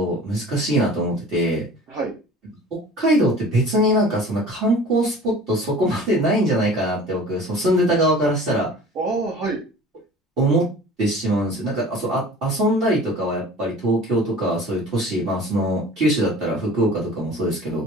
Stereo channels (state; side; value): normal; both; correlation 0.43